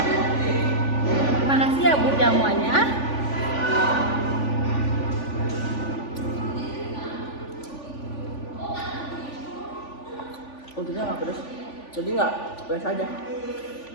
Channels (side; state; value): right; late; 3.5 ms